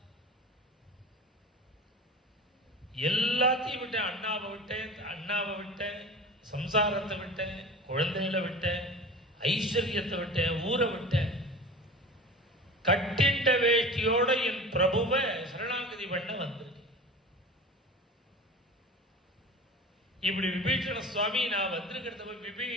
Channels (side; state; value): both; normal; correlation 0.34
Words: எல்லாத்தையும் விட்டேன். அண்ணாவை விட்டேன், சம்சாரத்தை விட்டேன், குழந்தைகளை விட்டேன், ஐஸ்வர்யத்தை விட்டேன், ஊரை விட்டேன். கட்டிண்ட வேஷ்டியோட என் பிரபுவை சரணாகதி பண்ண வந்திருக்கேன். இப்படி விபீஷண சுவாமி நான் வந்திருக்கிறத